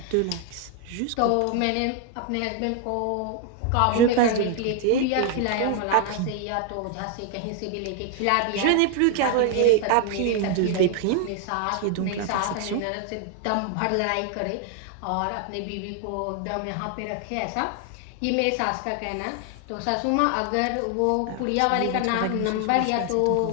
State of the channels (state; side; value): different; both; correlation 0.00